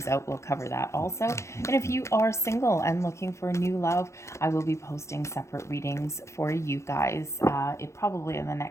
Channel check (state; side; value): late; right; 0.14 ms